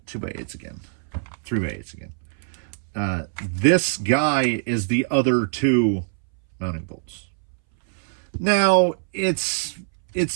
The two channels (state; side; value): silent; left; 61 dB below the other